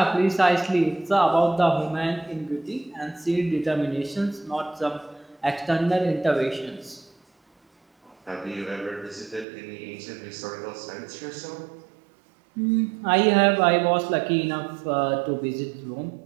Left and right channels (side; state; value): left; drops out; at 9.5 s